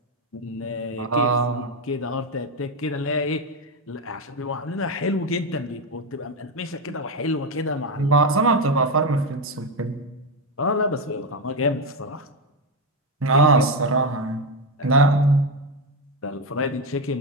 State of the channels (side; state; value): both; normal; correlation 0.10